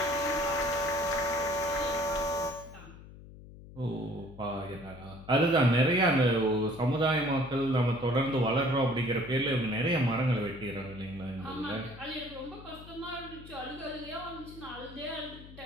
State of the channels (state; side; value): noise; left; hum, 17 dB below the sound